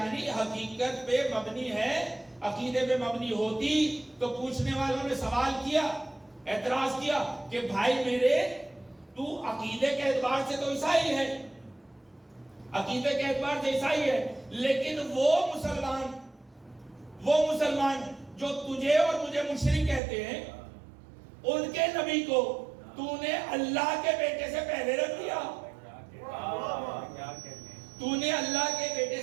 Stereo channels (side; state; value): left; drops out; at 20.0 s